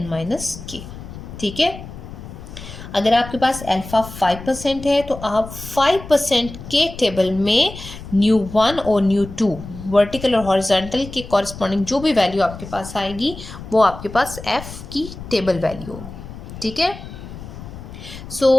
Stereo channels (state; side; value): noise; left; rumble, 13 dB below the sound